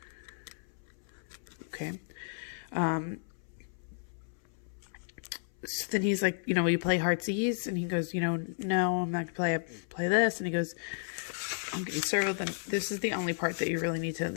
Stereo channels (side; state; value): right; silent; 56 dB below the other